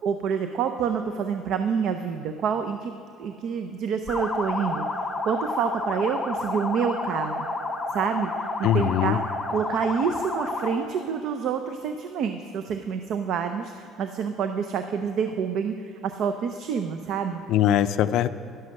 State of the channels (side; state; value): both; normal; correlation 0.53